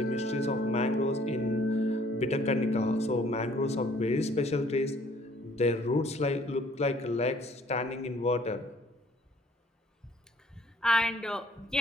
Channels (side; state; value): both; normal; correlation 0.60